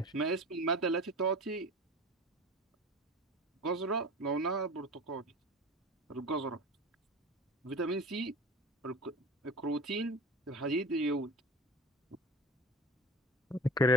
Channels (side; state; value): both; normal; correlation 0.34